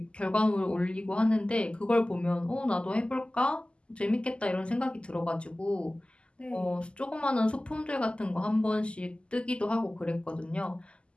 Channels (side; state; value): right; late; 0.052 ms